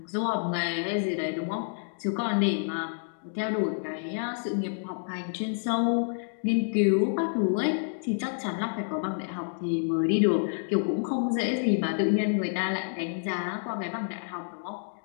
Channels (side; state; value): right; silent; digital silence